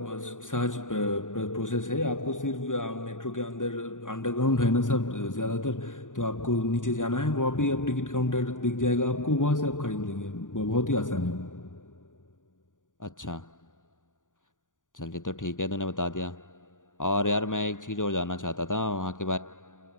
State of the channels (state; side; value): late; right; 0.88 ms